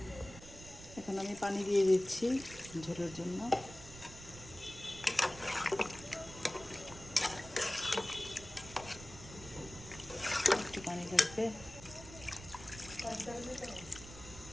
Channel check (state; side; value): noise; right; rumble, 16 dB below the sound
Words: এখন আমি পানি দিয়ে দিচ্ছি ঝোলের জন্য। একটু পানি লাগবে,